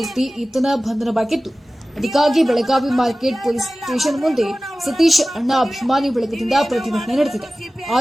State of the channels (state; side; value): normal; both; correlation 0.97